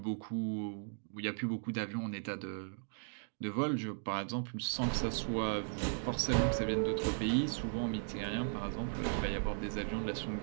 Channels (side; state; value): left; silent; digital silence